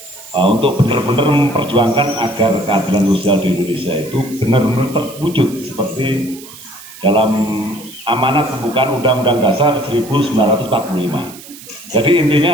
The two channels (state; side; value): noise; right; hiss, 17 dB below the sound